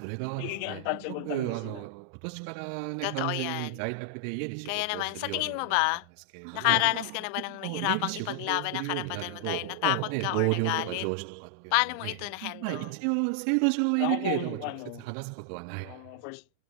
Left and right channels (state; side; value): different; both; correlation 0.00